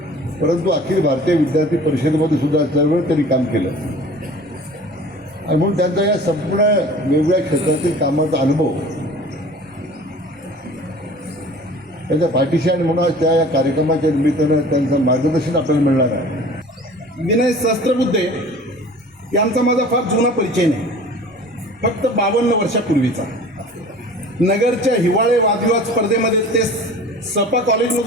परंतु अखिल भारतीय विद्यार्थी परिषदेमध्ये सुद्धा चळवळ त्यांनी काम केलं. आणि म्हणून त्यांचा या संपूर्ण वेगवेगळ्या क्षेत्रातील कामाचा अनुभव त्यांच्या पाठीशी आणि म्हणून त्या या कार्यक्रमाच्या निमित्तानं त्यांचं मार्गदर्शन आपल्याला मिळणार आहे. विनय सहस्त्रबुद्धे यांचा माझा फार जुना परिचय नाही, फक्त 52 वर्षापूर्वीचा. नगरच्या हिवाळे वादविवाद स्पर्धेमध्ये ते सपा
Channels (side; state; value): both; normal; correlation 0.44